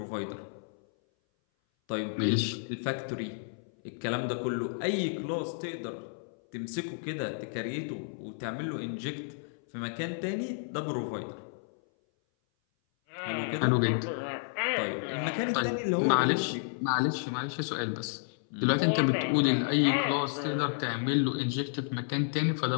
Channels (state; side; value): silent; right; 57 dB below the other